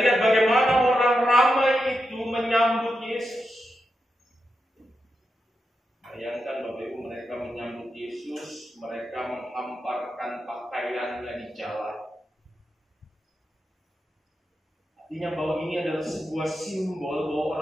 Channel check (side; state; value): both; normal; correlation 0.87